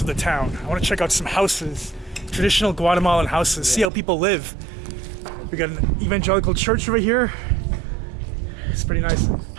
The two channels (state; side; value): drops out; left; at 3.9 s